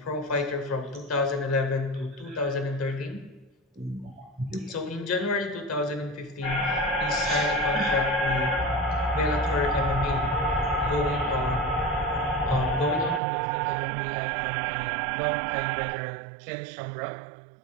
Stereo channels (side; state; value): left; drops out; at 13.2 s